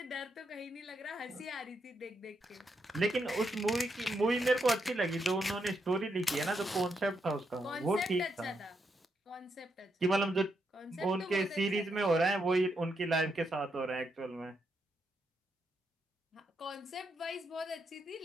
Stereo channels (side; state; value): both; normal; correlation 0.81